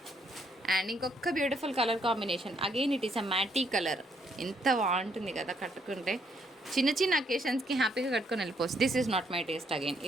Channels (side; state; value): both; normal; correlation 0.71